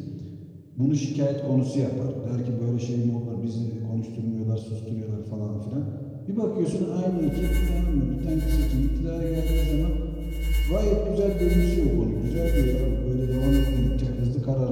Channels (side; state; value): both; identical; correlation 1.00